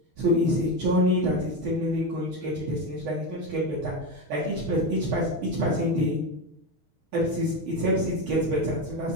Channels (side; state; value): left; late; 6.4 ms